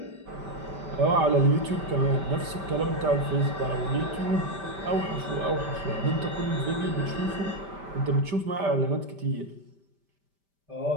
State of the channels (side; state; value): left; late; 5.1 ms